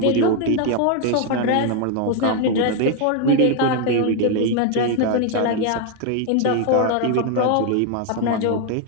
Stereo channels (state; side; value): different; both; correlation 0.00